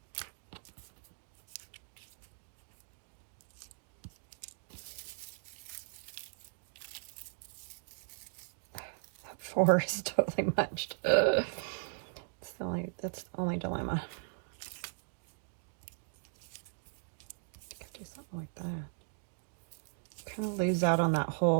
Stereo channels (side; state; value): left; silent; digital silence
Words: That 4 is totally munched. That's the only dilemma. Could do something like that. Kind of lose out on that